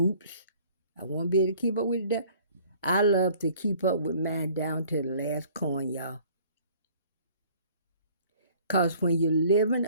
I won't be able to keep up with that. I love to keep up with mine down to the last coin, y'all. Because when you're living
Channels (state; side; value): inverted; both; correlation -0.54